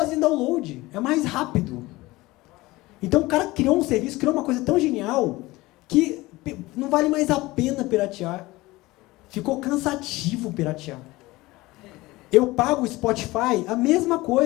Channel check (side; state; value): right; quieter; 20.0 dB